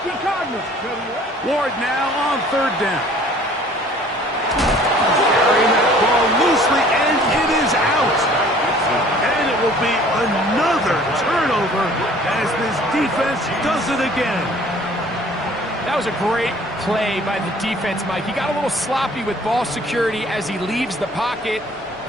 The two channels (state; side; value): normal; both; correlation 0.53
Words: Ward now on third down. Carrying that ball loosely, and it is out. And it will be another turnover as this defense does it again. That was a great play by the defense, Mike. He got a little sloppy with ball security as he leaves the pocket.